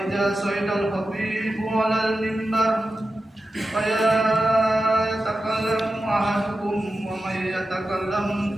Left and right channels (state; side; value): normal; both; correlation 0.92